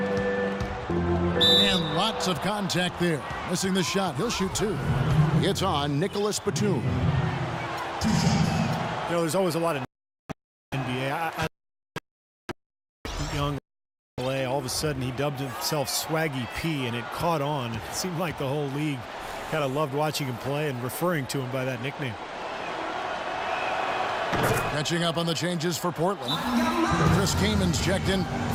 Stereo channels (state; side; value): identical; both; correlation 1.00